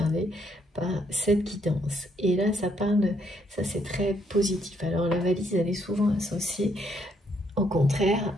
par cette guidance. Et là, ça parle, ça c'est très positif. Alors, la valise, elle est souvent associée, au contraire,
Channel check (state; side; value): normal; both; correlation 0.72